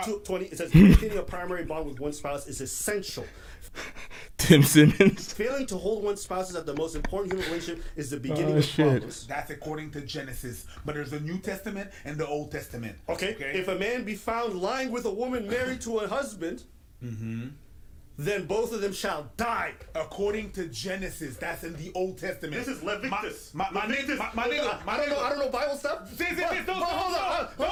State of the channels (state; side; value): identical; both; correlation 1.00